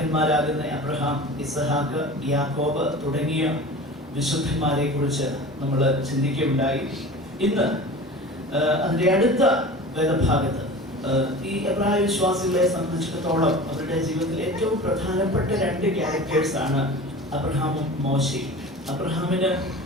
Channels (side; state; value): both; normal; correlation 0.37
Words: അബ്രഹാം, ഇസഹാക്ക്, യാക്കോബ് തുടങ്ങിയ വിശുദ്ധന്മാരെ കുറിച്ച് നമ്മൾ ചിന്തിക്കുകയുണ്ടായി. ഇന്ന് അതിൻ്റെ അടുത്ത വേദഭാഗത്ത് ഈ എബ്രായ വിശ്വാസികളെ സംബന്ധിച്ചിടത്തോളം അവരുടെ ജീവിതത്തിൽ ഏറ്റവും പ്രധാനപ്പെട്ട 2 ക്യാരക്ടേഴ്സ് ആണ് അബ്രഹാമും മോശയും. അബ്രഹാമിന്